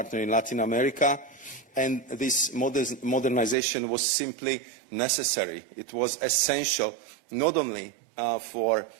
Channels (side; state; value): left; drops out; at 3.6 s